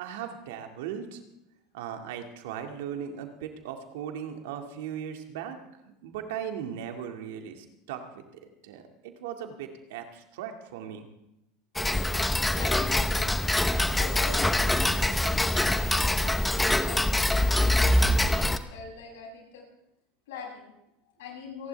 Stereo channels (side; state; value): both; normal; correlation 0.89